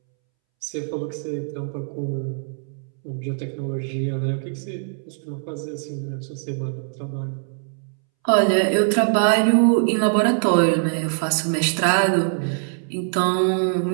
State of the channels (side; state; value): left; silent; 63 dB below the other